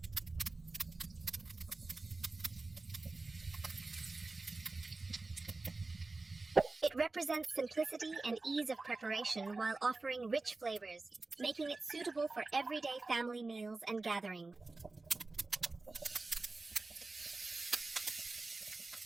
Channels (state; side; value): quieter; left; 3.5 dB